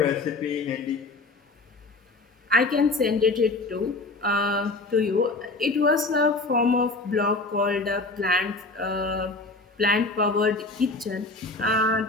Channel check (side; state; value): right; quieter; 3.3 dB